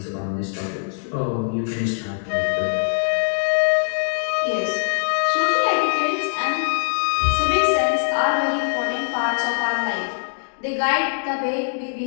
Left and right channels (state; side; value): silent; right; digital silence